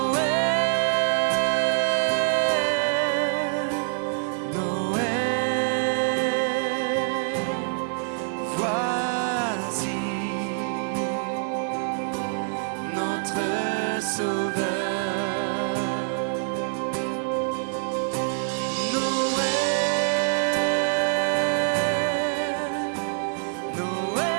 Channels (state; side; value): silent; left; digital silence